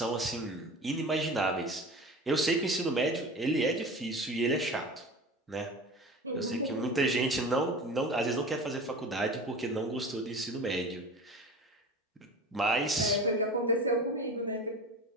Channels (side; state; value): both; normal; correlation 0.34